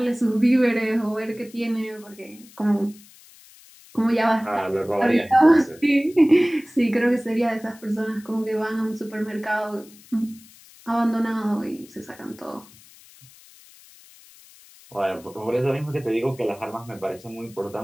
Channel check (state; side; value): noise; left; hiss, 24 dB below the sound